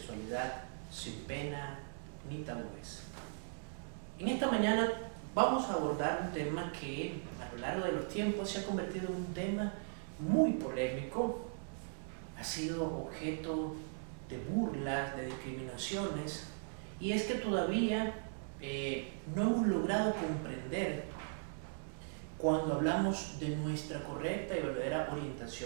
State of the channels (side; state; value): left; silent; digital silence